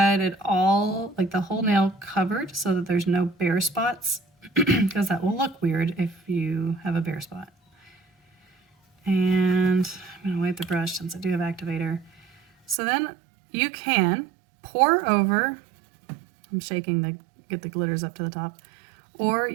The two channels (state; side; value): drops out; left; at 12.8 s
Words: it all, like the whole nail covered, so that there's no bare spots, because that will look weird if you have a bare spot. And I'm going to wipe the brush since I do have activator. So then you can pour over, I'm shaking get the glitters up to the top, or